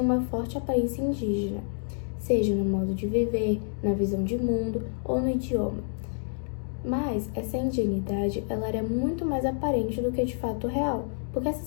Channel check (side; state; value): right; silent; digital silence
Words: uma forte aparência indígena, seja no modo de viver, na visão de mundo ou no idioma. Mas essa indianidade ela era muito mais aparente do que de fato real, porque